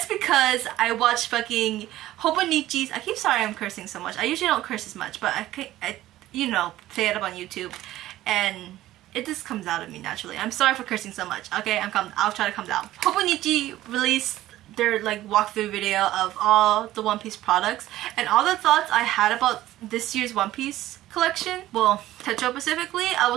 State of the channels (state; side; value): quieter; left; 14.9 dB